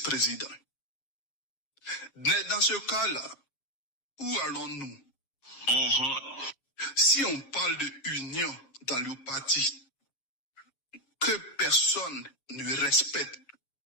Mais dans ce cas-là, où allons-nous? Si on parle de union dans le parti, que personne ne respecte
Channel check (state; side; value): late; right; 7.0 ms